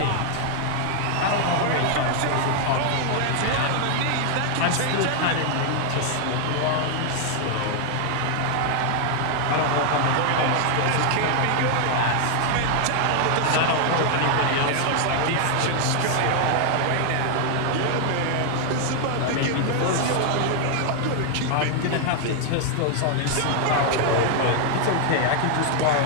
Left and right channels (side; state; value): both; different; correlation 0.00